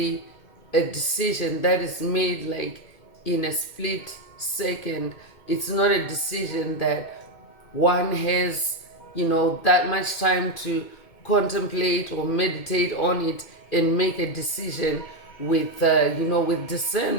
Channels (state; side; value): late; right; 2.2 ms